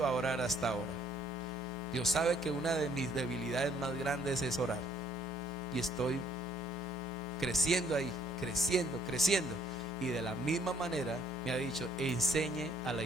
a orar hasta ahora. Dios sabe que una de mis debilidades más grandes es orar, y estoy creciendo ahí, creciendo. Y de la misma manera me ha dicho: enseñe a la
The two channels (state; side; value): normal; both; correlation 0.64